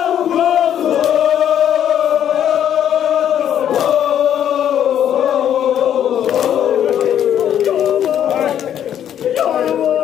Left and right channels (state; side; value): quieter; right; 10.0 dB